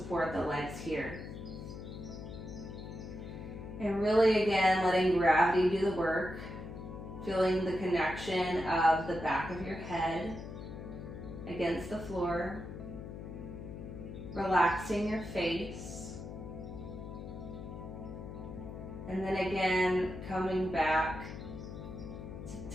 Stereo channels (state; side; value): noise; left; hum, 10 dB below the sound